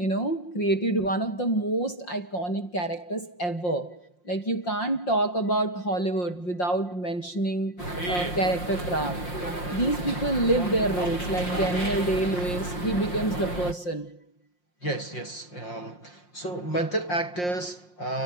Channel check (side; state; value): right; late; 5.6 ms